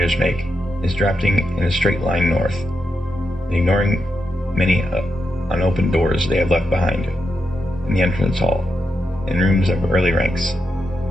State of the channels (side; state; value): both; normal; correlation 0.85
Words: make is drafting in a straight line north and ignoring many unopened doors they have left behind in the entrance hall in rooms of early ranks.